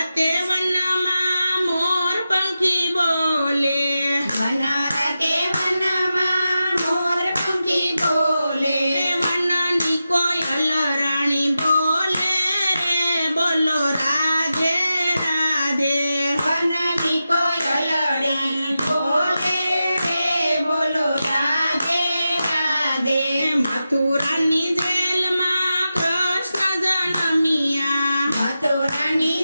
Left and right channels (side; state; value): both; inverted; correlation -0.91